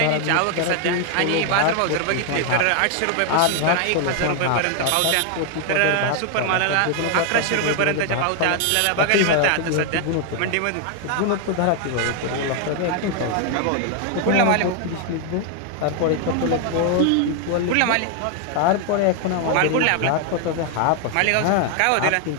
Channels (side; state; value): both; different; correlation 0.00